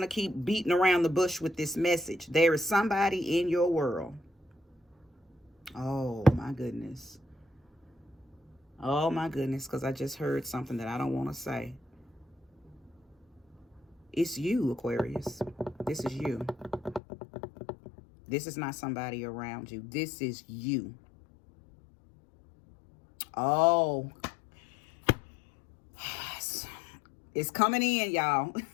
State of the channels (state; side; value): drops out; right; at 17.0 s